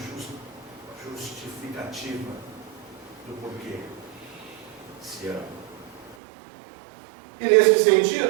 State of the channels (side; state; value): left; drops out; at 6.2 s